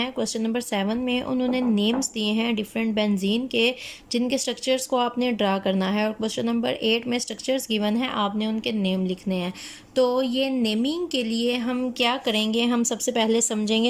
क्वेश्चन नंबर 7 में उन्होंने नेम्स दिए हैं डिफरेंट बेंजीन के, जिनके स्ट्रक्चर्स को आपने ड्रा करना है। और क्वेश्चन नंबर 8 में स्ट्रक्चर्स गिवन है, आपने उनके नेम लिखने हैं। तो ये नेमिंग के लिए हम क्या करेंगे, हम सबसे पहले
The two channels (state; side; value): identical; both; correlation 1.00